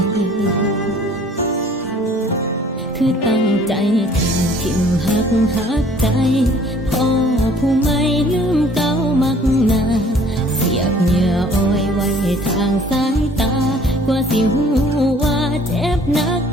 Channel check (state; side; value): normal; both; correlation 0.54